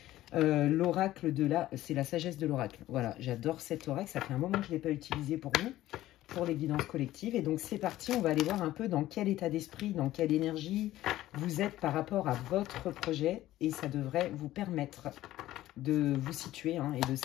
L'oracle c'est la sagesse de l'oracle. Voilà, j'adore cet oracle. Ça fait un moment que je ne l'ai pas utilisé pour vous, pour les guidances collectives. Et donc, c'est parti. On va aller voir un peu dans quel état d'esprit, dans quelle énergie vous êtes par rapport à votre projet. Et ça devrait vous permettre de vous situer et de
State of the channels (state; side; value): quieter; right; 14.9 dB